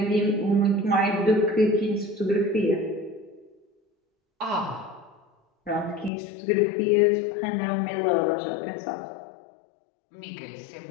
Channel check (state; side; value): drops out; right; at 6.1 s